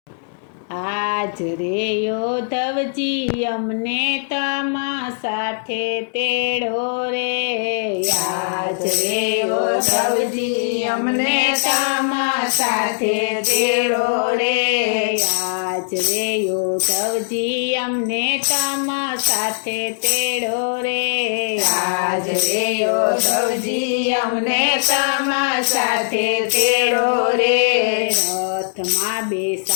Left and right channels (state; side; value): silent; right; digital silence